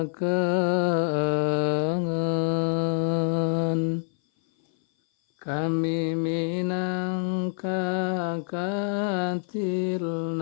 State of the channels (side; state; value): right; silent; 57 dB below the other